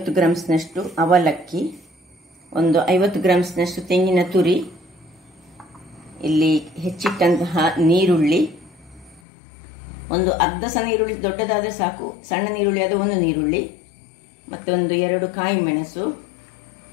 ಗ್ರಾಮ್ಸ್ನಷ್ಟು ಅವಲಕ್ಕಿ, ಒಂದು 50 ಗ್ರಾಮ್ಸ್ನಷ್ಟು ತೆಂಗಿನ ತುರಿ, ಇಲ್ಲಿ ಹೆಚ್ಚಿಟ್ಟಂತಹ ನೀರುಳ್ಳಿ, ಒಂದು ಅರ್ಧ ಸಹ ನೀರುಳ್ಳಿ, ದೊಡ್ಡದಾದರೆ ಸಾಕು, ಸಣ್ಣ ನೀರುಳ್ಳಿ ಆದ ಒಂದು ನೀರುಳ್ಳಿ, ಮತ್ತೊಂದು 2 ಕಾಯಿ ಮೆಣಸು,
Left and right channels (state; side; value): drops out; right; at 9.2 s